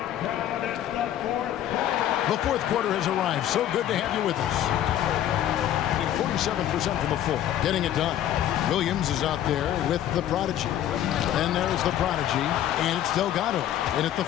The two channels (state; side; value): quieter; right; 11.6 dB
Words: The fourth quarter has arrived. So good to have you with us. 47% from the floor, getting it done. Williams is out there with the prodigy. And there's the prodigy, and it's Delgado in at the